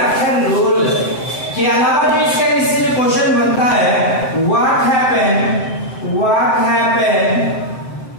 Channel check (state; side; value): late; right; 7.7 ms